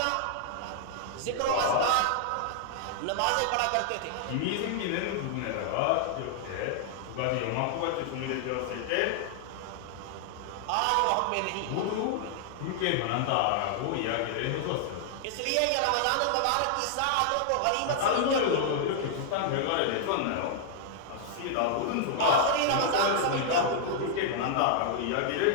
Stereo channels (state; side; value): different; both; correlation -0.01